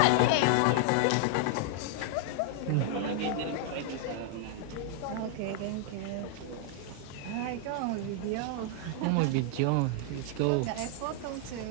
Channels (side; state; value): both; different; correlation 0.00